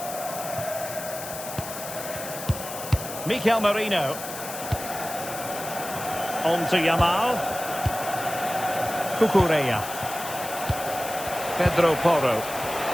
Mikel Merino. On to Yamal. Cucurella. Pedro Porro.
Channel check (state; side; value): noise; left; hiss, 9 dB below the sound